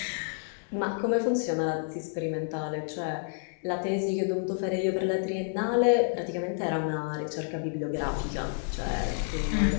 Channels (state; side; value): silent; right; 58 dB below the other